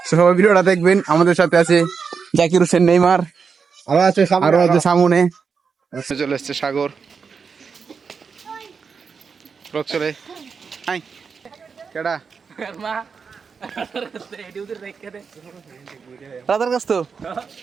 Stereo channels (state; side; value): quieter; left; 5.7 dB